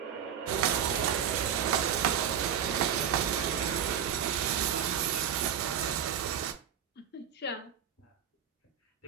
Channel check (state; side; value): quieter; left; 8.7 dB